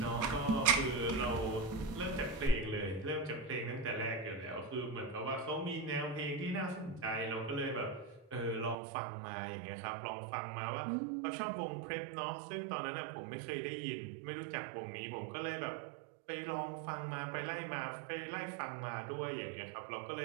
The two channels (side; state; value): left; drops out; at 8.8 s